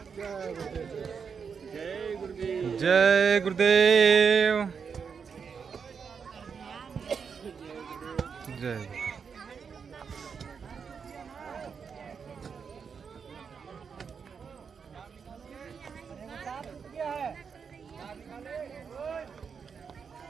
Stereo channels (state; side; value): quieter; left; 6.2 dB